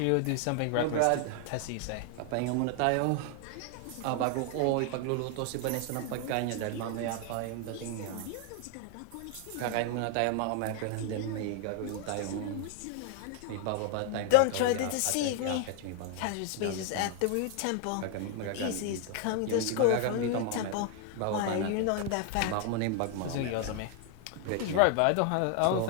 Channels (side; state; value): both; different; correlation 0.00